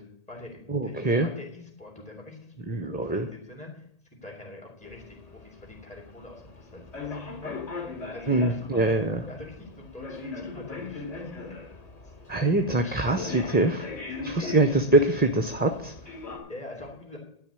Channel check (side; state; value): right; late; 1.8 ms